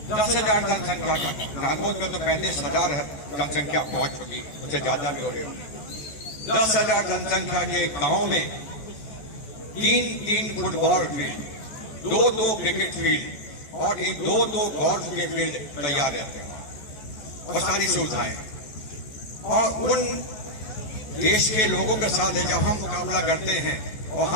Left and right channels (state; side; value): late; right; 14 ms